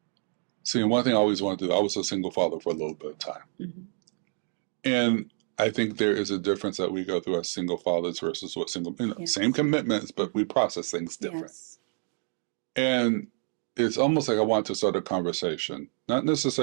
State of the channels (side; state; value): left; silent; 59 dB below the other